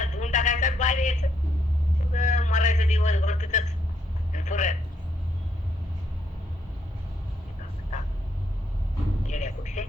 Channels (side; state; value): both; normal; correlation 0.74